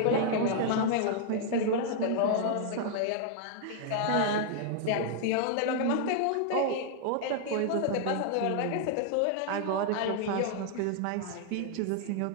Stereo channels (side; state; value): both; different; correlation 0.00